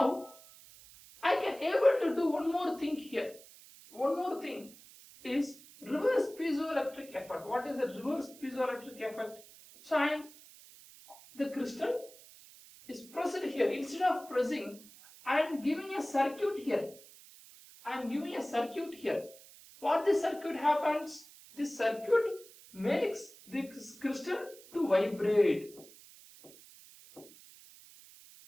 I can able to do one more thing here. One more thing is reverse piezoelectric effect. What is the reverse piezoelectric effect? So the crystal is pressed here. Instead of pressing, I am giving a circuit here. I am giving a circuit here. What this circuit happens? This circuit makes this crystal to vibrate.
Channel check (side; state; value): right; noise; hiss, 21 dB below the sound